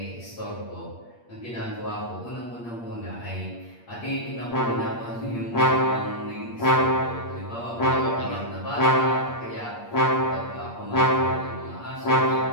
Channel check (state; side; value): late; right; 8.6 ms